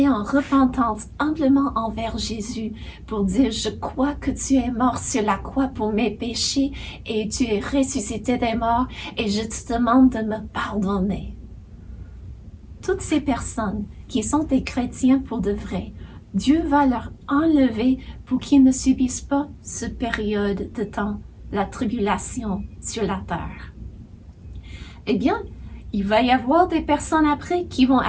en repentance humblement envers Jésus pour dire « Je crois que tu es mort sur la croix pour mes péchés et tu es ressuscité des morts et je te demande de me pardonner. » Toutes ces personnes qui sont des chrétiens pour de vrai, Dieu va leur enlever pour qu'ils ne subissent pas cette période de temps, la tribulation sur la terre. Eh bien, il va y avoir des personnes après qui vont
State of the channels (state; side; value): identical; both; correlation 1.00